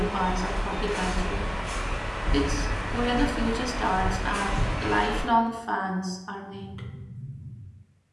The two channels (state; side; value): identical; both; correlation 1.00